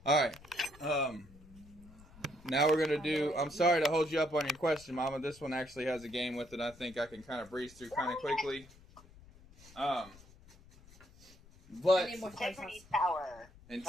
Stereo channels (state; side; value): noise; left; rumble, 23 dB below the sound